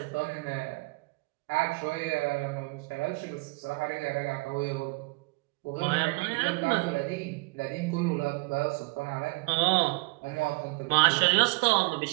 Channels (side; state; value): left; quieter; 27.1 dB